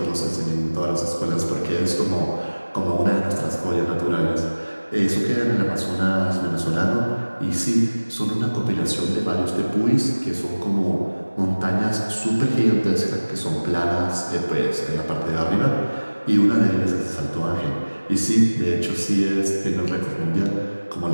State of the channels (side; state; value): both; inverted; correlation -1.00